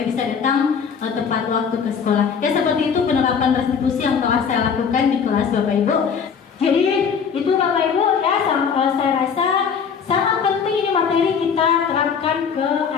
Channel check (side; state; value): right; quieter; 6.6 dB